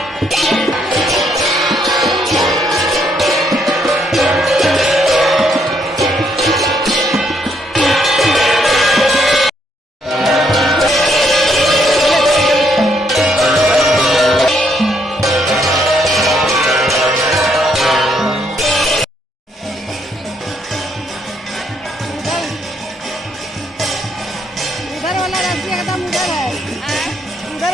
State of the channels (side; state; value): both; normal; correlation 0.72